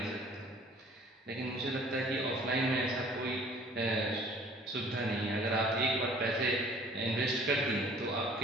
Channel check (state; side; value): normal; both; correlation 0.53